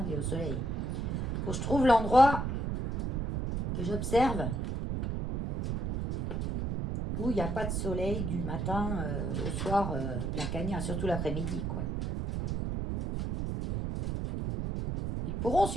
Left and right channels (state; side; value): noise; right; rumble, 1 dB below the sound